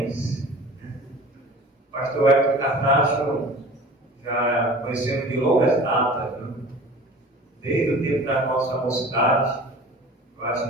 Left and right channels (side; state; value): both; normal; correlation 0.42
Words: O pastor Wellington Cartacho já conhecemos de longas datas, né? Desde o tempo da nossa mocidade, eu acho